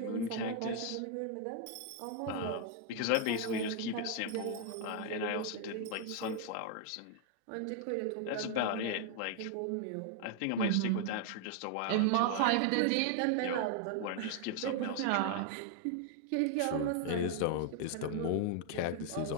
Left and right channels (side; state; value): both; different; correlation 0.00